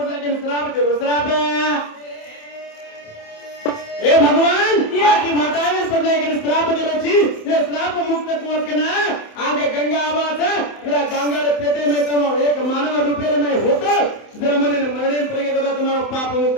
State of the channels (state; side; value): late; right; 27 ms